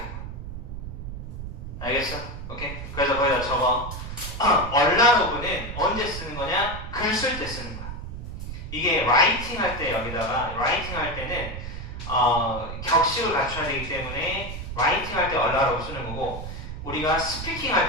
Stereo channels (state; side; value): noise; right; rumble, 8 dB below the sound